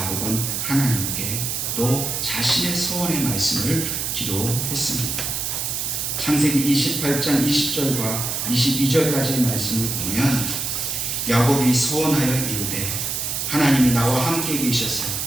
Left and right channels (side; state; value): right; noise; hiss, 2 dB below the sound